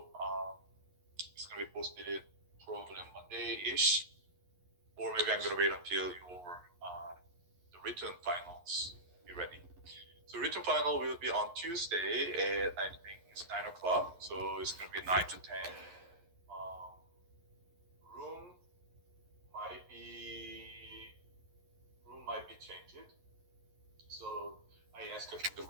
it's gonna be posted probably Monday-ish, or maybe I'm gonna wait until your the written finals be ready. So written final will be on Tuesday at I think it's 9 o'clock, so it's gonna be 9 to 10. Room might be changed. So I asked the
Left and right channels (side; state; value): left; late; 11 ms